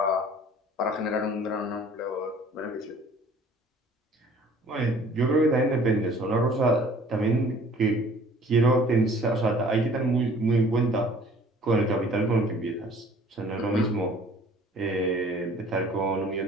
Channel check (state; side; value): normal; both; correlation 0.52